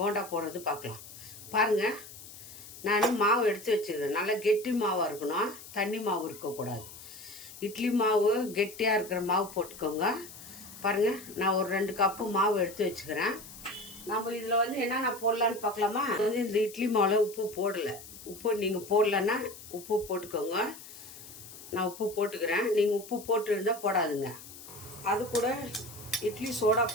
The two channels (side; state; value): left; noise; hiss, 16 dB below the sound